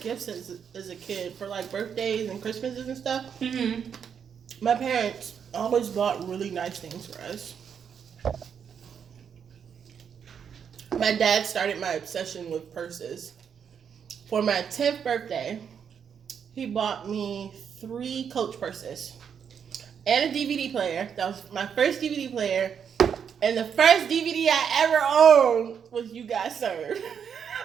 as a kid for like birthdays and Christmases and stuff. Mm-hmm. My parents always bought really nice things for us. My dad started my obsession with purses. For my 10th birthday, he bought me 3 Coach purses and a DVD player. That was my first DVD player. And the first DVD I ever owned was You Got Served.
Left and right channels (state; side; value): quieter; left; 7.5 dB